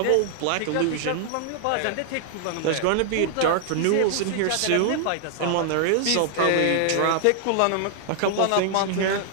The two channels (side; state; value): both; different; correlation 0.00